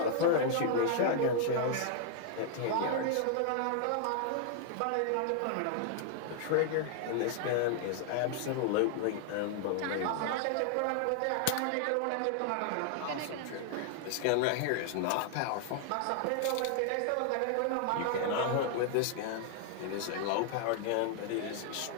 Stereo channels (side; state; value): both; different; correlation 0.00